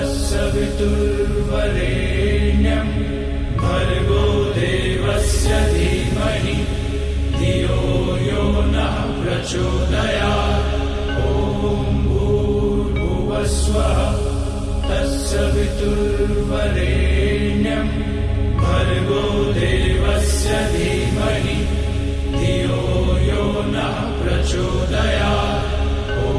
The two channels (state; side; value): identical; both; correlation 1.00